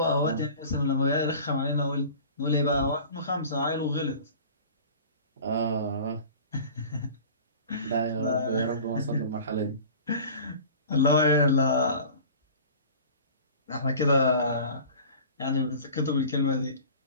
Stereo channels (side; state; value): both; inverted; correlation -0.42